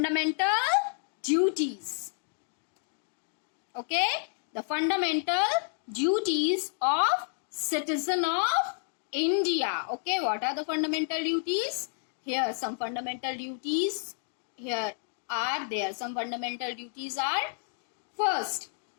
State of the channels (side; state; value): right; silent; digital silence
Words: duties. Okay, the fundamental duties of citizen of India. Okay, what are the fundamental duties? Here some fundamental duties here are there. Some fundamental duties are, first,